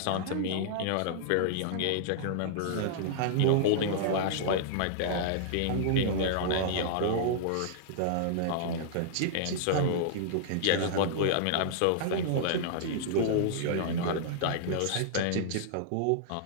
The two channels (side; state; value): both; different; correlation -0.01